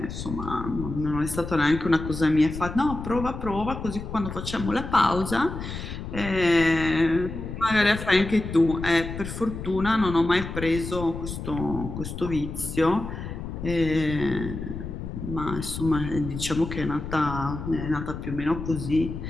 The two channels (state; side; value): noise; left; rumble, 8 dB below the sound